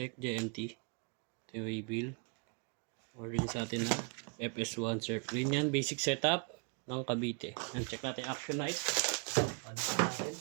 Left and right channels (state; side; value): quieter; left; 36.5 dB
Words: JNT. Ito yung waybill. Order nyo sa atin na FS1 Surfline yan. Basic setup ng Cavite. Yan, check natin action light. Ano pa natin?